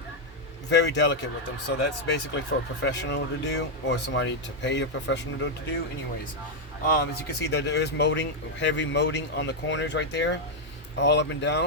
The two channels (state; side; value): normal; both; correlation 0.00